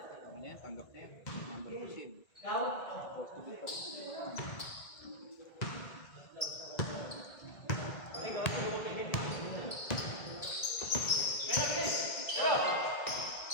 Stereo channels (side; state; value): right; late; 1.9 ms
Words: yan? Tanggap na yan. Number 2 seed.